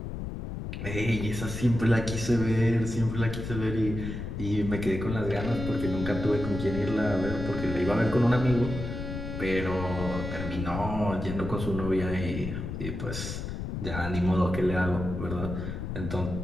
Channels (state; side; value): noise; left; rumble, 6 dB below the sound